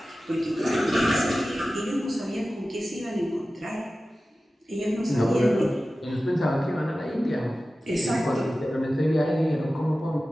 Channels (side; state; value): both; normal; correlation 0.95